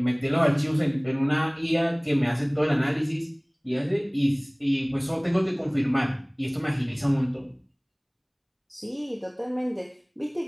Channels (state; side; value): identical; both; correlation 1.00